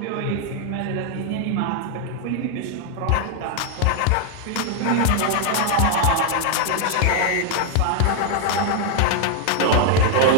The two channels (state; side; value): different; both; correlation 0.00